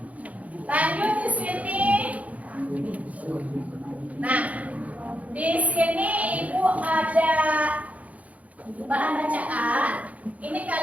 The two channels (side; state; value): left; late; 0.069 ms